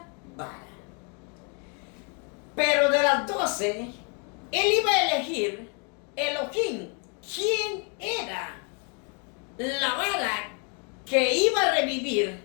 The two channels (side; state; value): right; quieter; 36.5 dB